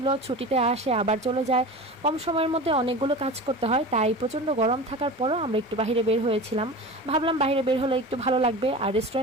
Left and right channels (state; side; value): normal; both; correlation 0.32